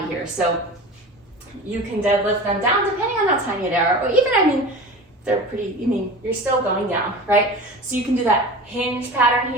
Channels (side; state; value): both; normal; correlation 0.34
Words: here. So you can deadlift them down depending on how tiny they are, or even, they're pretty, you're still going down, right? So you can do that hinge pattern